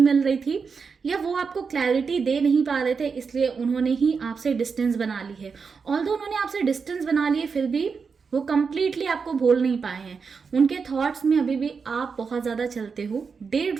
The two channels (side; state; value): left; quieter; 5.4 dB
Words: रही थी, या वो आपको क्लैरिटी दे नहीं पा रहे थे इसलिए उन्होंने ही आपसे डिस्टेंस बना ली है। ऑल्दो उन्होंने आपसे डिस्टेंस बना लिए फिर भी वो कंप्लीटली आपको भूल नहीं पाए हैं, उनके थॉट्स में अभी भी आप बहुत ज़्यादा चलते हो। डे